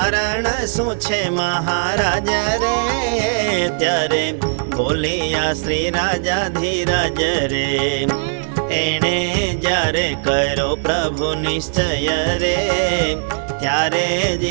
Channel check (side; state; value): left; silent; digital silence